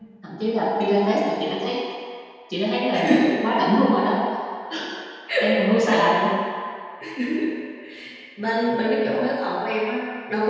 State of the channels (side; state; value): both; identical; correlation 1.00